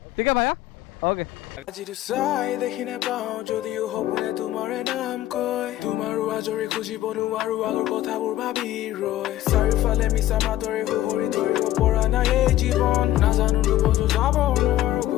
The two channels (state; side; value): quieter; right; 14.1 dB